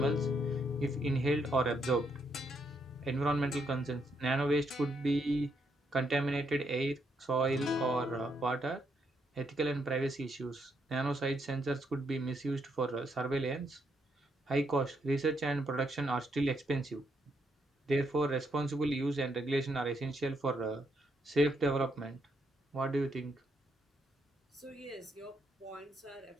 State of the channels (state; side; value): normal; both; correlation 0.76